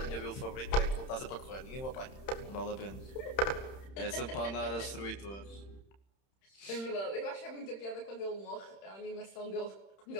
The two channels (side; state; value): right; late; 31 ms